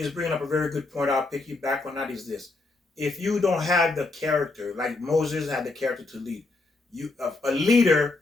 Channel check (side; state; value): right; quieter; 3.4 dB